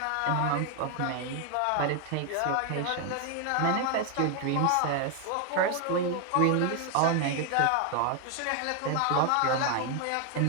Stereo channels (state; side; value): different; both; correlation 0.01